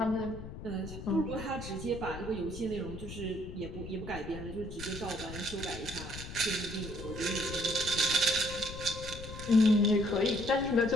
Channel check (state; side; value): noise; left; rumble, 10 dB below the sound